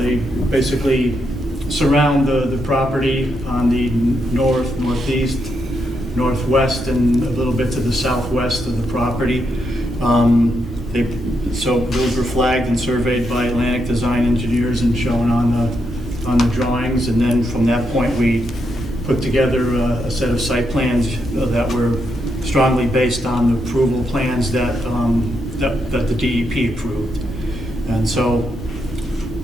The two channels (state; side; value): normal; both; correlation 0.81